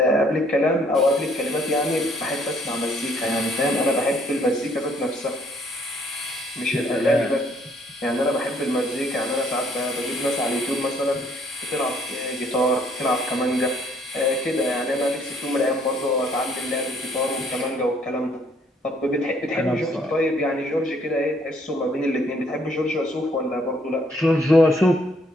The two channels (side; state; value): both; normal; correlation 0.64